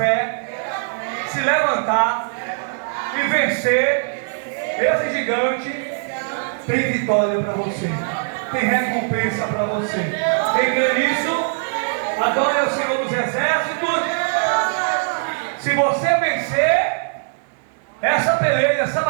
se levantar e vencer esse gigante, tem vitória para você, tem recompensa para você. Quem crê nisso, adore o Senhor dos Exércitos. Se você vencer essa peleja, essa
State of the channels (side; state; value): left; silent; digital silence